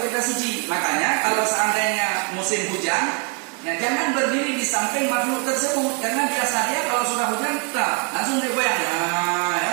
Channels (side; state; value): left; quieter; 34.3 dB